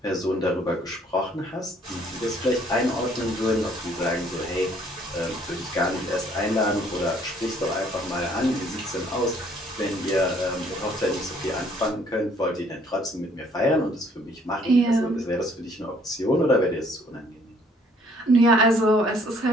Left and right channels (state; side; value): normal; both; correlation 0.61